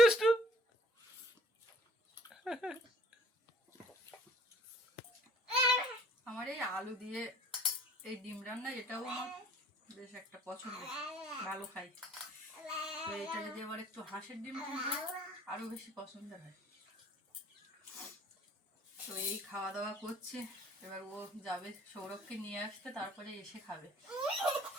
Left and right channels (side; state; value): both; normal; correlation 0.54